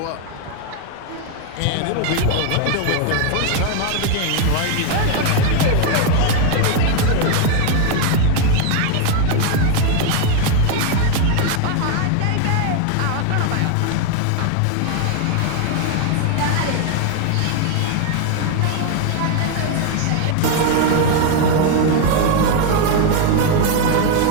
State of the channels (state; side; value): different; both; correlation 0.01